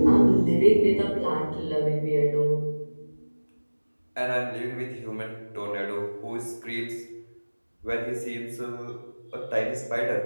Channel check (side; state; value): both; inverted; correlation -1.00